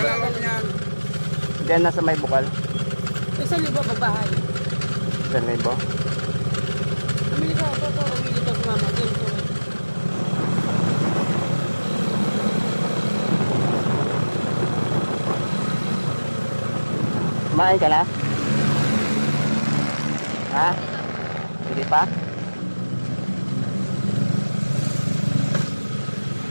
yan. Diyan nasa may bukal? 1,000 pagbahay. 1,000? Umili ko ako ito. Umili ko si mama. Dito. Kumain ka na? Ha? Hindi pa?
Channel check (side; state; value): both; inverted; correlation -1.00